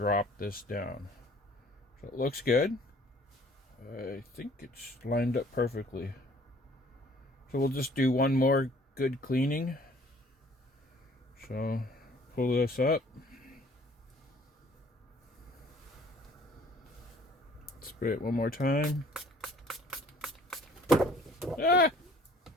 this down. So it looks good. I think it's lined up perfectly. So we'll just do one more good cleaning. So pull this up. Spray it one more time. Ah!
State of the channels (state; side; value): normal; both; correlation 0.55